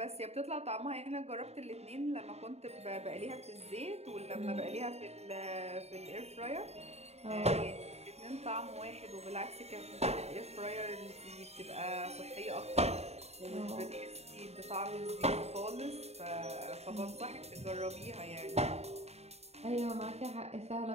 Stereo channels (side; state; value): left; late; 0.31 ms